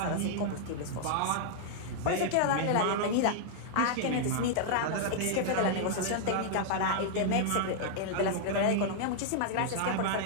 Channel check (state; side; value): different; both; correlation -0.01